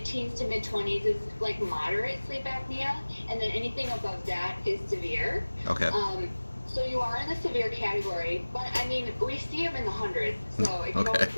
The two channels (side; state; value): both; inverted; correlation -1.00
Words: to mid-20s is like moderate sleep apnea. And then anything above that is severe. Okay. So you are in the severe category, but I mean, we see them in the hundreds, so it can Okay. always